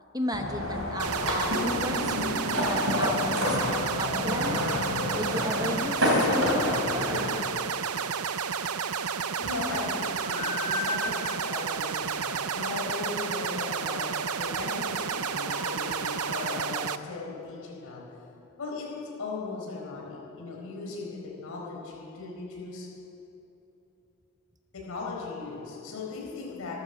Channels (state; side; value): normal; both; correlation 0.02